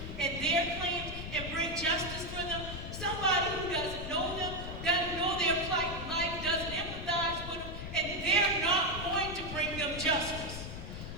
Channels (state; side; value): noise; left; rumble, 8 dB below the sound